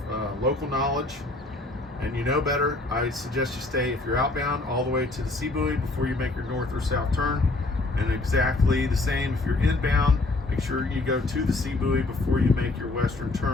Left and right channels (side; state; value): right; quieter; 3.1 dB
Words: local knowledge and you know better. I suggest you stay, if you're outbound, all the way to the sea buoy before you make your north or south turn. And exactly the same if you're inbound, make sure you go to the sea buoy before you make your western